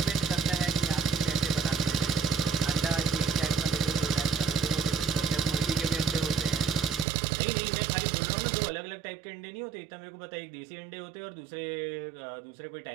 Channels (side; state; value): left; drops out; at 7.1 s